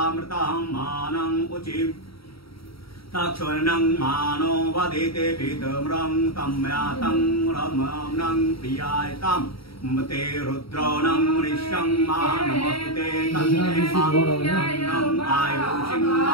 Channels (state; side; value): late; right; 0.75 ms